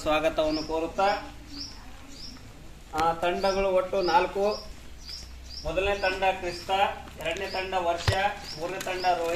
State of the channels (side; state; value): both; identical; correlation 1.00